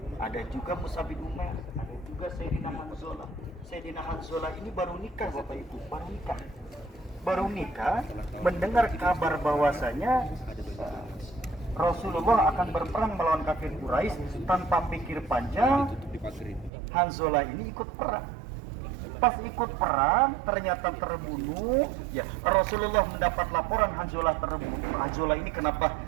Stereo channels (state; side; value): drops out; left; at 16.7 s